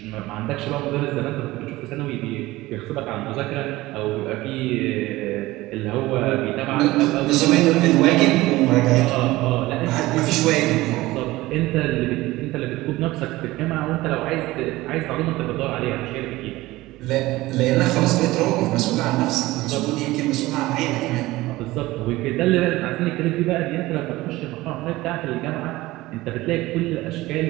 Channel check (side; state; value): left; quieter; 18.5 dB